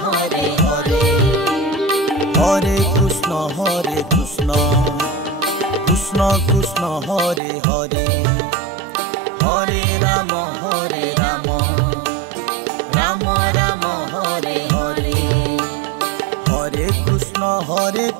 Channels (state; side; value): drops out; left; at 7.4 s